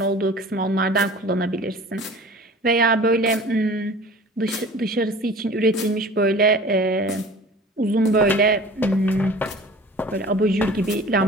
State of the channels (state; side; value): normal; both; correlation 0.43